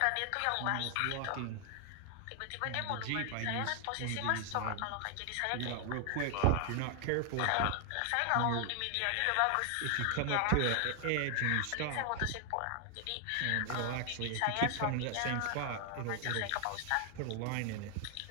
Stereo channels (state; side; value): different; both; correlation 0.00